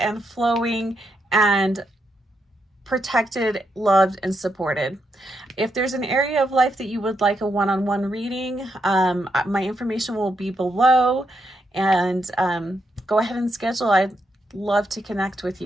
flowing and protected, loved, and supported. If there's an area of life that you would like a one-on-one reading, my information will be below. And go ahead and schedule. I'd love to connect with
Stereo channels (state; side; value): normal; both; correlation 0.81